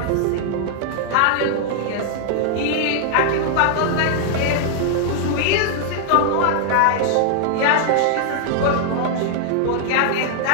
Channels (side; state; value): both; different; correlation 0.00